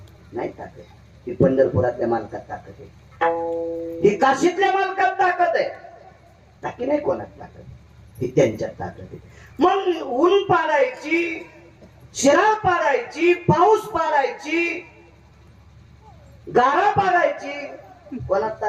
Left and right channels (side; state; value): both; identical; correlation 1.00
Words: नाही ताकद. ही पंढरपुरातल्या मालकात ताकद आहे, ही काशीतल्या मालकात ताकद आहे. बाकी नाही कोणात ताकद, ही त्यांच्यात ताकद आहे. मग ऊन पाडायची, शिराळ पाडायची, पाऊस पाडायची, गारा पाडायची, कोणात